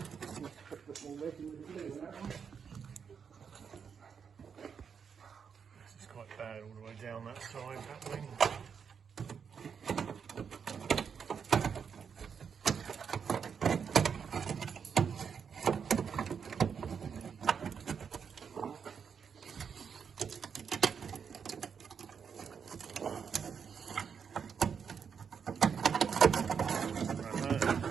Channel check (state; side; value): quieter; left; 6.7 dB